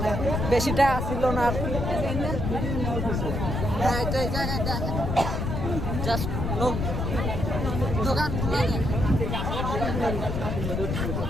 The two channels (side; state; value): left; noise; rumble, 1 dB below the sound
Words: বেশি টাকা ছিল না আর কি। হ্যাঁ তো এই জায়গায় দেখেন জাস্ট লোক দোকানগুলো।